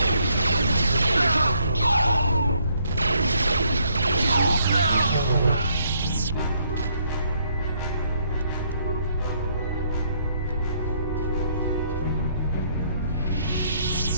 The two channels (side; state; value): both; inverted; correlation -0.69